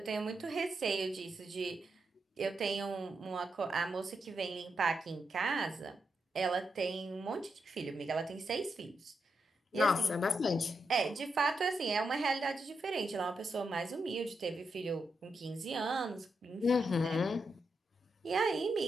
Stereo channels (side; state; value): both; normal; correlation 0.84